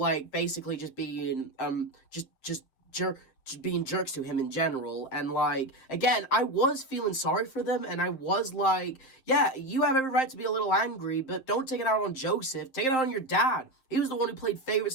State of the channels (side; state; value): right; late; 7.6 ms